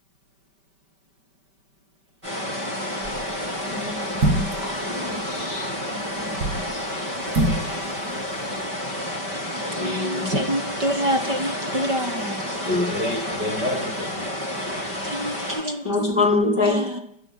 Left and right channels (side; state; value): left; late; 5.1 ms